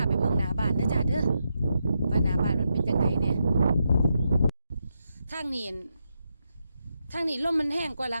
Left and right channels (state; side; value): inverted; both; correlation -0.83